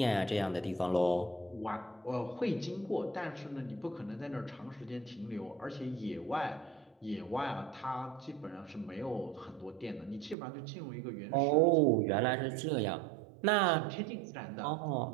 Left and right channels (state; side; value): drops out; left; at 10.4 s